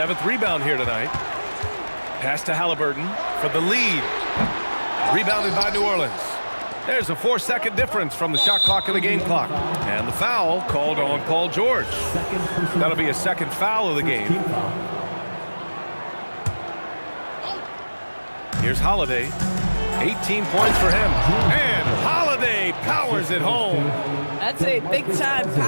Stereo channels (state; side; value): inverted; both; correlation -1.00